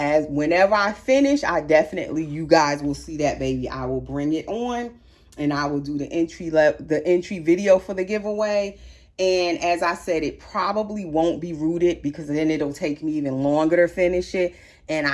whenever I finish, I definitely, you guys will see that baby. I will bring it on and I will do the entry video for the giveaway. And as I said, it probably won't be rooted, because then it'll take me even longer to finish it. And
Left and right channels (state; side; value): identical; both; correlation 1.00